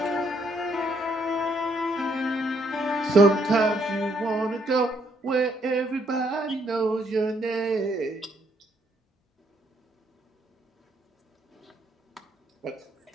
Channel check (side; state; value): both; normal; correlation 0.71